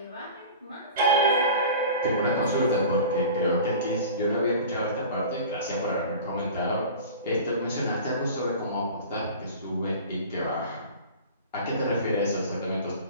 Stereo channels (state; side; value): inverted; both; correlation -0.38